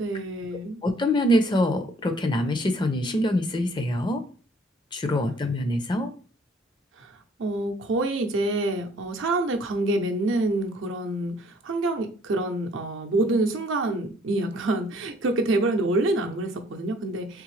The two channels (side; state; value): both; normal; correlation 0.60